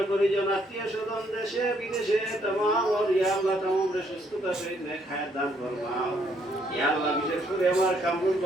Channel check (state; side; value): normal; both; correlation 0.70